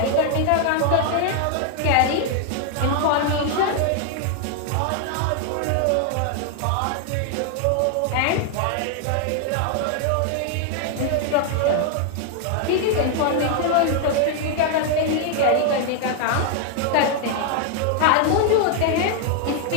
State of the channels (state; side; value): different; both; correlation 0.00